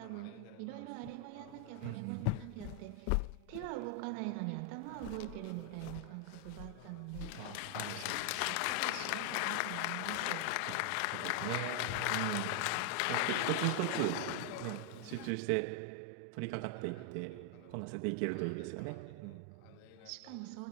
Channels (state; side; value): different; both; correlation 0.00